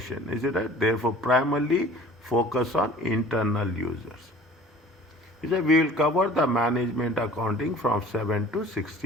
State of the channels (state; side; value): normal; both; correlation 0.47